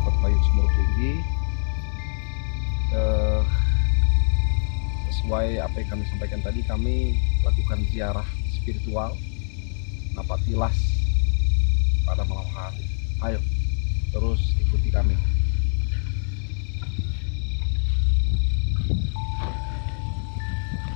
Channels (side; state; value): right; silent; digital silence